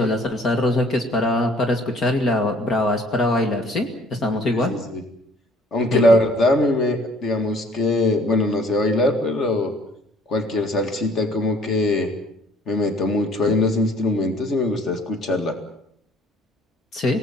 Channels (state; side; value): normal; both; correlation 0.57